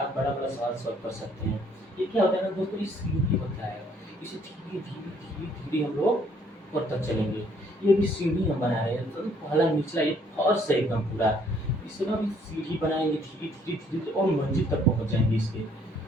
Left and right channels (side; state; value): both; normal; correlation 0.64